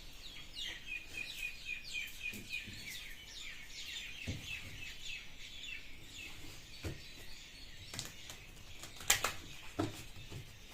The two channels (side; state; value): both; identical; correlation 1.00